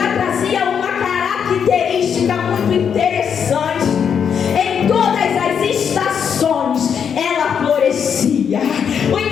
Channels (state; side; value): quieter; right; 7.4 dB